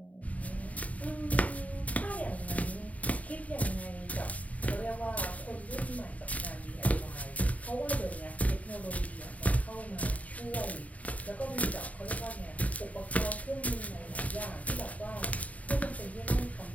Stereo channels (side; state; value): right; late; 0.070 ms